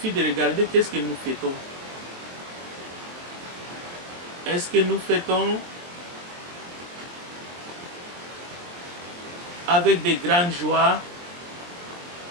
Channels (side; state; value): left; late; 23 ms